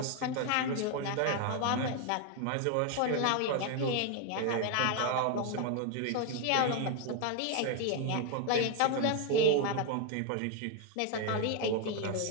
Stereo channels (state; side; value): different; both; correlation 0.01